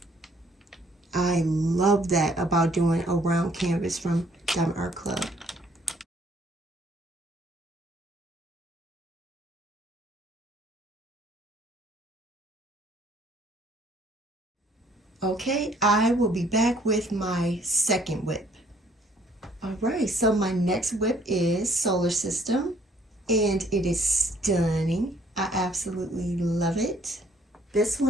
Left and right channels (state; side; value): normal; both; correlation 0.62